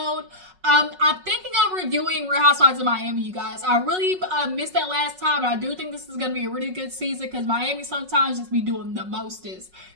I'm thinking of reviewing Real Housewives of Miami, you guys. I really missed that last time, and I do think this is going to be a really good season because Miami sometimes just be doing the mostest.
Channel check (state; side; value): late; left; 5.4 ms